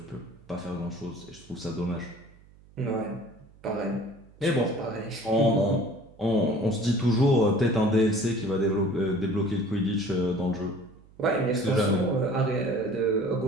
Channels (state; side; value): noise; right; hum, 25 dB below the sound